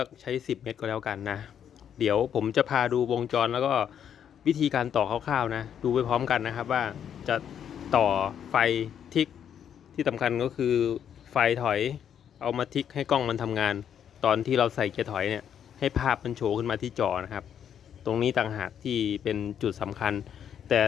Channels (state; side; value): quieter; right; 8.9 dB